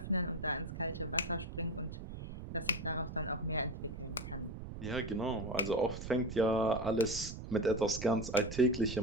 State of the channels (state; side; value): noise; right; rumble, 9 dB below the sound